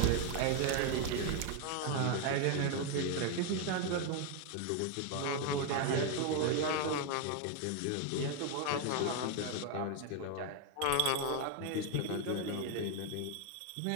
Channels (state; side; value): different; both; correlation 0.01